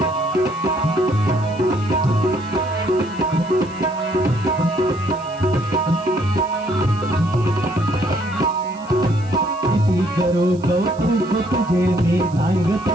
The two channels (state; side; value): noise; right; hiss, 25 dB below the sound